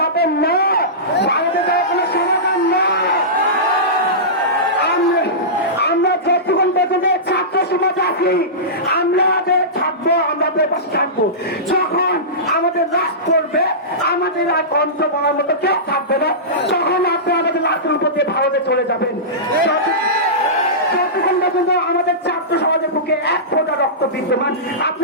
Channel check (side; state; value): both; normal; correlation -0.19